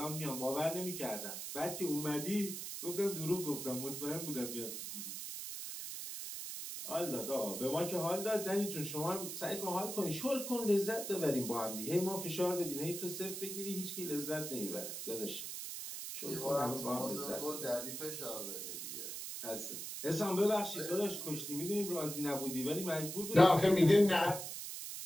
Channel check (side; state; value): right; noise; hiss, 6 dB below the sound